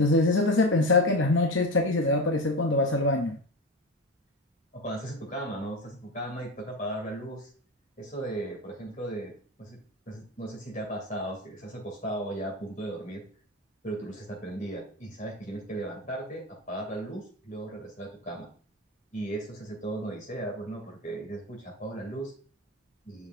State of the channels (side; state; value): both; normal; correlation 0.22